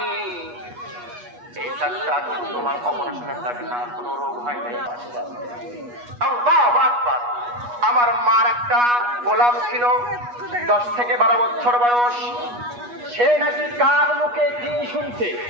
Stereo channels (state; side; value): late; left; 8.3 ms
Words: এই ডাক্তার তোমার অপারেশনের থাকে না, কোনো রোগ হয় নাই। আল্লাহু আকবার। আমার মার একটা গোলাম ছিল 10 থেকে 12 বছর বয়স। সে নাকি কার মুখে কি শুনছে,